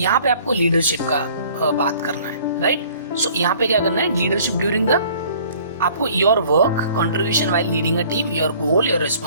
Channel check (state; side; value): inverted; both; correlation -0.54